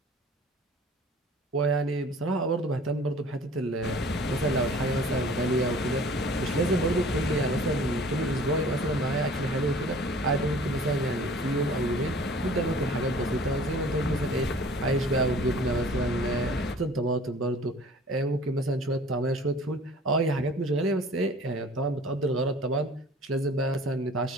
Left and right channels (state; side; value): normal; both; correlation 0.48